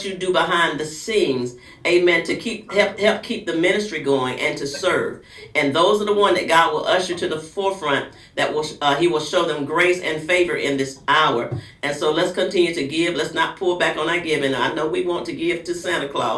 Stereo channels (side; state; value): both; identical; correlation 1.00